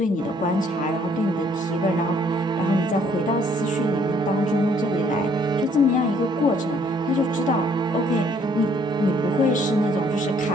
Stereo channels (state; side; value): normal; both; correlation 0.63